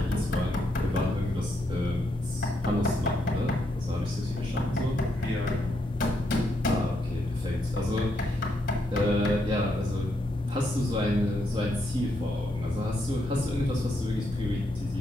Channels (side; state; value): both; normal; correlation 0.78